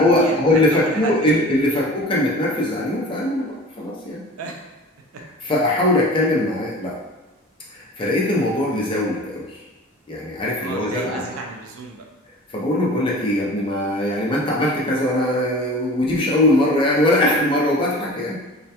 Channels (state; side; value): normal; both; correlation 0.39